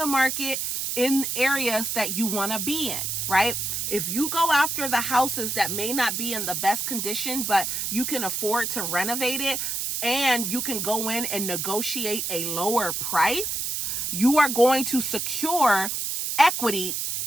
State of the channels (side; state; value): right; noise; hiss, 2 dB below the sound